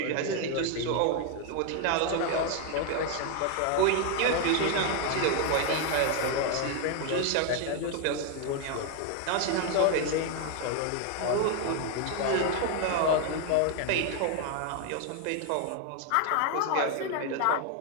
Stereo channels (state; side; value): different; both; correlation 0.01